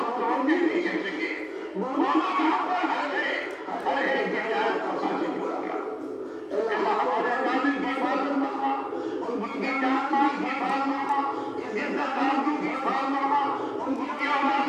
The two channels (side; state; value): both; identical; correlation 1.00